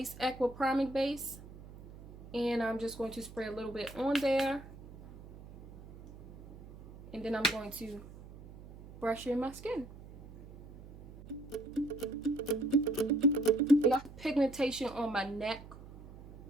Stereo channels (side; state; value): right; noise; hum, 17 dB below the sound